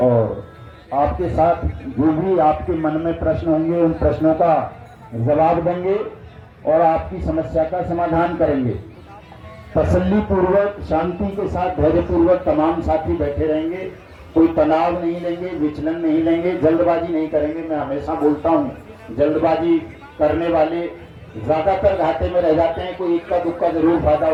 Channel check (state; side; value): identical; both; correlation 1.00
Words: और आपके साथ जो भी आपके मन में प्रश्न होंगे उन प्रश्नों का जवाब देंगे और आपकी समस्या का समाधान करेंगे। तसल्ली पूर्वक, शांति के साथ, धैर्य पूर्वक तमाम साथी बैठे रहेंगे। कोई तनाव नहीं लेंगे, विचलन नहीं लेंगे, जल्दबाजी नहीं करेंगे। मैं हमेशा बोलता हूँ, जल्दबाजी करने वाले ज्यादातर घाटे में रह जाते हैं। कोई इक्का दुक्का जरूर फायदा